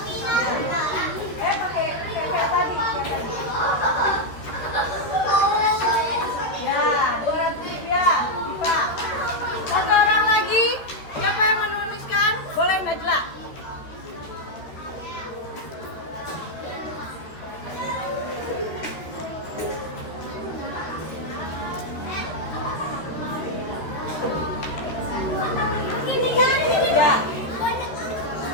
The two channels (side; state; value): right; late; 13 ms